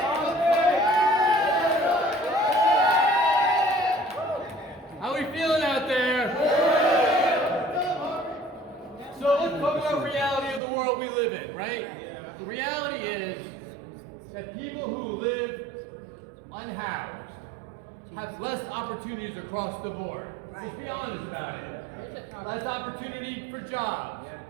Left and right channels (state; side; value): drops out; left; at 10.6 s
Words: How we feeling out there? So let's talk about reality of the world we live in, right? The reality is that people who live unhoused have less opportunities across the board. Let's be honest about it. Less opportunity for jobs,